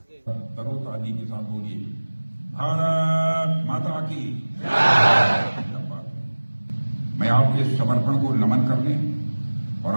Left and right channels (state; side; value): inverted; both; correlation -1.00